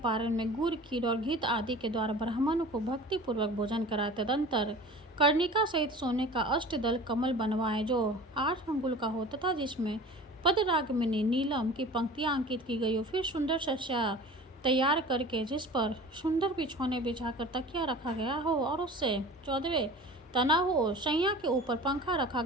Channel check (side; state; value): both; normal; correlation 0.40